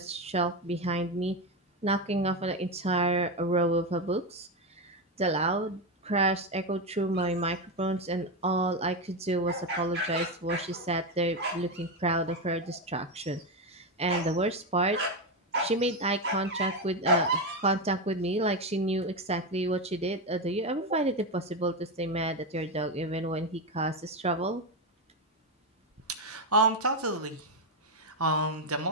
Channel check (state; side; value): normal; both; correlation 0.11